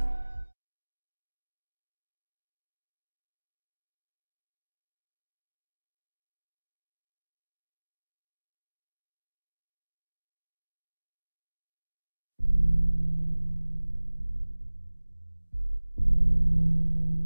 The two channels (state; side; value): inverted; both; correlation -1.00